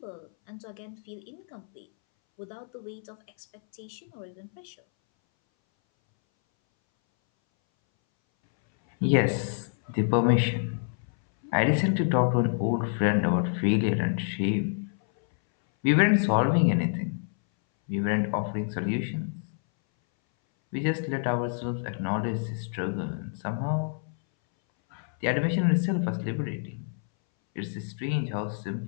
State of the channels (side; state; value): right; silent; 59 dB below the other